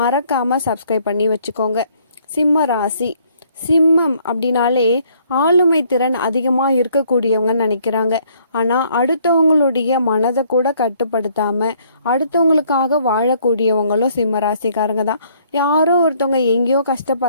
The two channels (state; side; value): inverted; both; correlation -0.64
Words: மறக்காமல் சப்ஸ்கிரைப் பண்ணி வச்சுக்கோங்க. சிம்ம ராசி சிம்மம் அப்படின்னாலே ஆளுமை திறன் அதிகமாக இருக்கக்கூடியவங்கன்னு நினைக்கிறாங்க. ஆனால் அடுத்தவங்களுடைய மனதை கூட கட்டுப்படுத்தாமல் அடுத்தவங்களுக்காக வாழக்கூடியவங்களும் சிம்ம ராசிக்காரங்க தான். யாரோ ஒருத்தவங்க எங்கேயோ